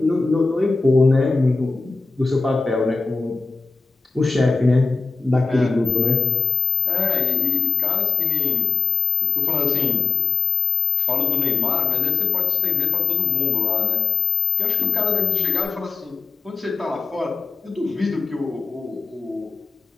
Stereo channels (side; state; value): right; quieter; 4.4 dB